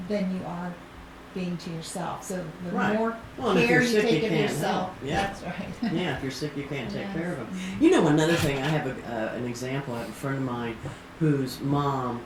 than you are being to yourself. So the Right. more Well, and if care you're you sick, take you of can't yourself, help. Yeah. that's right. Yeah, if you're sick, you can't take Yes. care of them. You know, another thing, I have an example. I have a friend of mine whose mom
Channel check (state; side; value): identical; both; correlation 1.00